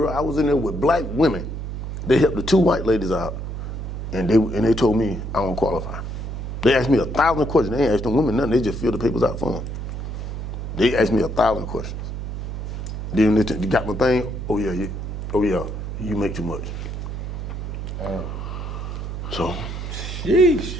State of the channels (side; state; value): right; noise; hum, 6 dB below the sound